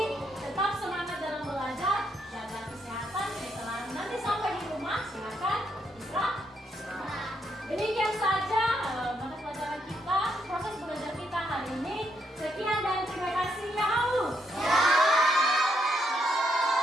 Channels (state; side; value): normal; both; correlation 0.77